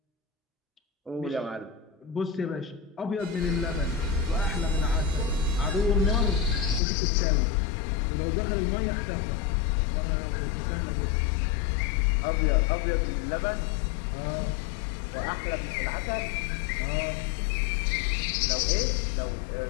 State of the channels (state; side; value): drops out; right; at 6.8 s